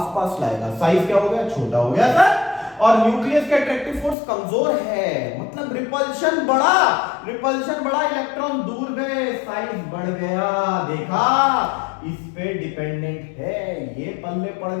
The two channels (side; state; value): right; drops out; at 4.2 s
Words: पास लाएगा, साइज क्या हो गया? छोटा हो गया सर। और न्यूक्लियस की अट्रैक्टिव फोर्स कमजोर है, मतलब रिपल्शन बढ़ा, इलेक्ट्रॉन दूर गए, साइज बढ़ गया। देखा, इस पे डिपेंडेंट है, ये पल्ले पड़